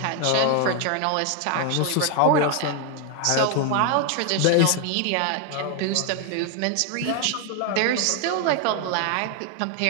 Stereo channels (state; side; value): different; both; correlation 0.01